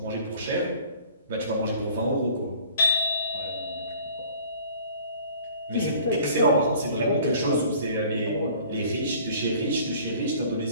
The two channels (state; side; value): inverted; both; correlation -0.51